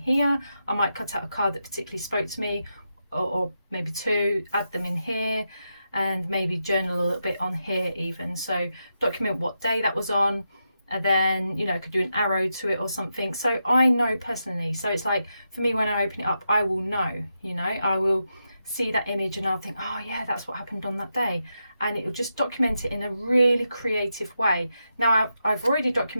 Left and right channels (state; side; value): inverted; both; correlation -0.86